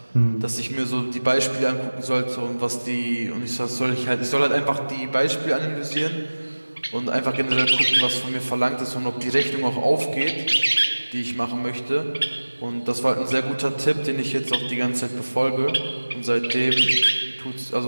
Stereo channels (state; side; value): inverted; both; correlation -1.00